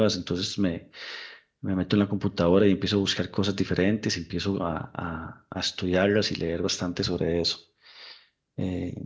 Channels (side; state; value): both; identical; correlation 1.00